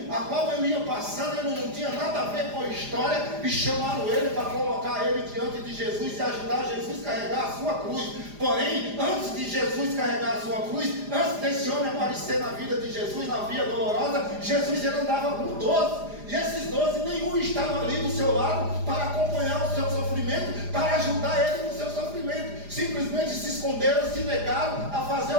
a qual ele ia passando, ele não tinha nada a ver com a história, e chamaram ele para colocar ele diante de Jesus e ajudar Jesus a carregar a sua cruz. Porém, antes de Jesus carregar a sua cruz, antes desse homem aparecer na vida de Jesus, na via dolorosa, Jesus ele andava com 12. E esses 12, nenhum estava ali do seu lado para acompanhar o seu sofrimento, para ajudar ele no seu sofrimento. Simplesmente se esconderam, se negaram a fazer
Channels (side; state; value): left; late; 4.9 ms